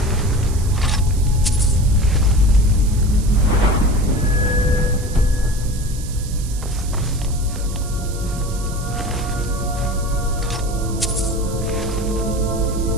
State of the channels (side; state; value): right; noise; hiss, 15 dB below the sound